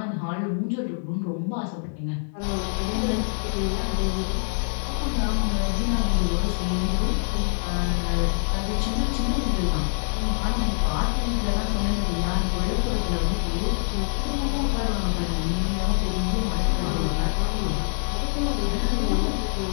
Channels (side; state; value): right; silent; digital silence